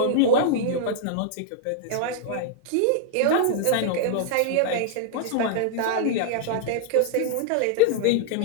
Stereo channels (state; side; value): different; both; correlation -0.01